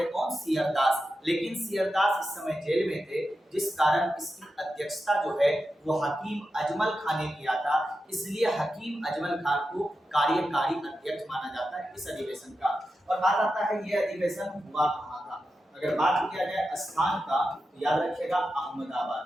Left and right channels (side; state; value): both; normal; correlation 0.90